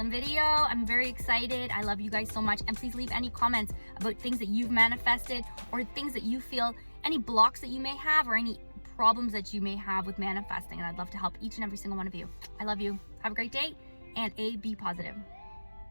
video. I'm very excited. I love you guys so much. And please leave any comments about things that you've manifested or things that you feel, any blocks that you may have or any problems that you may have with manifesting. And I'd love to help each and every single one of you. I love you. Have a great day and be positive.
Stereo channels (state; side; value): inverted; both; correlation -1.00